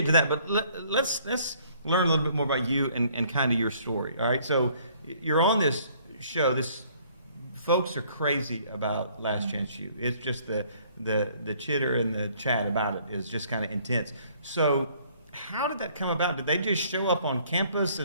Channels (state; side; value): inverted; both; correlation -0.61